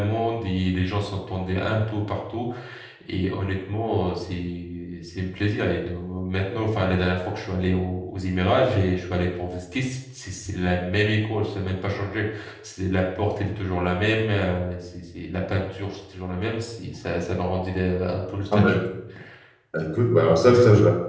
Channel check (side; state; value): both; identical; correlation 1.00